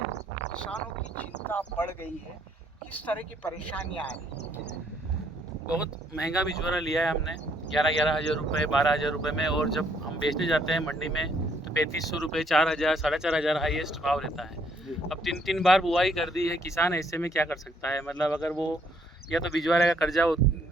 किसानों की चिंता बढ़ गई है, किस तरह की परेशानियां आ रही हैं? बहुत महंगा बिचौरा लिया है हमने 11,000 रुपये 12,000 रुपये में, और जब हम बेचने जाते हैं मंडी में तो 3,500 रुपये 4,000 4,500 हाईएस्ट भाव रहता है। अब 3 बार बुआई कर दी है, किसान ऐसे में क्या कर सकता है। मतलब अगर वो या तो बिचौरे का कर्जा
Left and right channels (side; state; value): both; normal; correlation 0.68